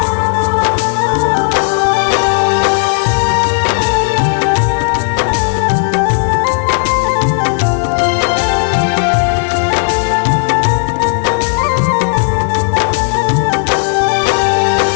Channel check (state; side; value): silent; right; digital silence